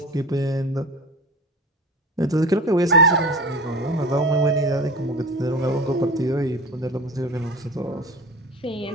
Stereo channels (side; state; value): both; normal; correlation 0.33